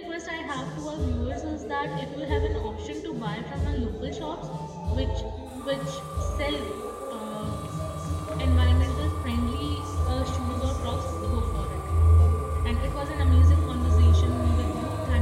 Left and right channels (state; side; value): identical; both; correlation 1.00